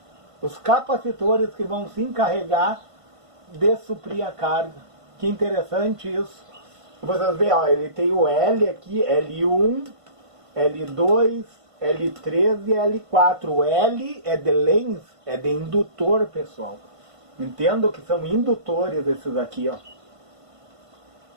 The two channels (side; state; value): left; late; 1.5 ms